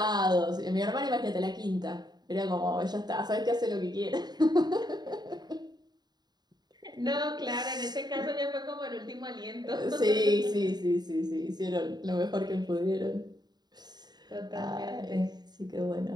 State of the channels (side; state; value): left; late; 0.20 ms